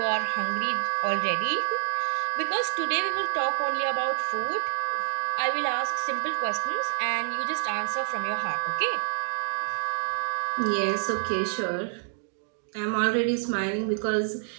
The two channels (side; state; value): left; silent; digital silence